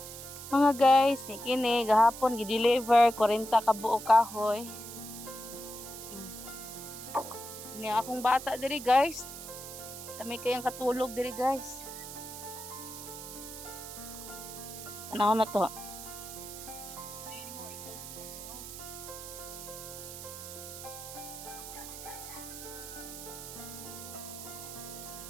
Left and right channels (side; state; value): right; noise; hiss, 11 dB below the sound